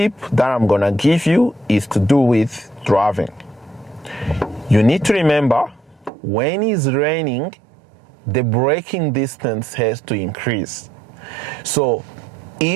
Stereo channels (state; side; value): drops out; left; at 6.1 s